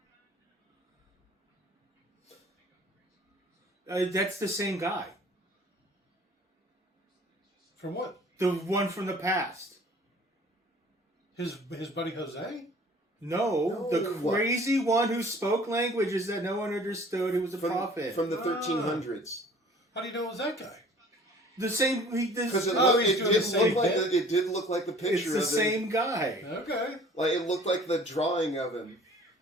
That's the same guy. From what? The one from the past. His buddy Jose? No, No, the crazy one who spoke languages that no one understood, who was a prophet. From the 1300s. How do you know it was that guy? The same. Because it, Oh, looked- he's it doing did the same look like bit? it did look like the It's picture the of him. same guy. Okay. Like, it looked like the drawing of him.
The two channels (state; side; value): normal; both; correlation 0.50